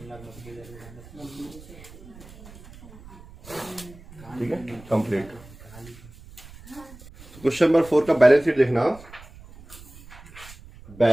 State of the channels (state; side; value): noise; right; rumble, 19 dB below the sound